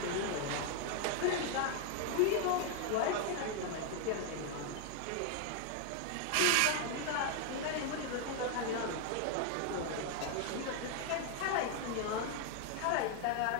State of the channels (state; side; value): different; both; correlation 0.00